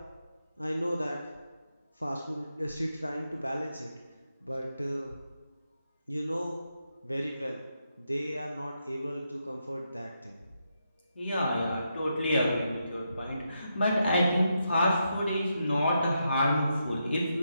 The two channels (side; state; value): both; inverted; correlation -0.83